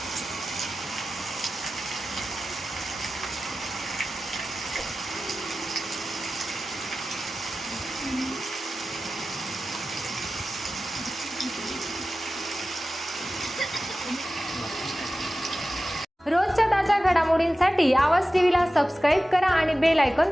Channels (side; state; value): both; normal; correlation 0.95